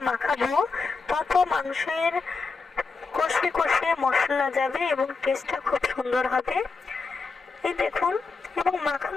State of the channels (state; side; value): quieter; right; 4.4 dB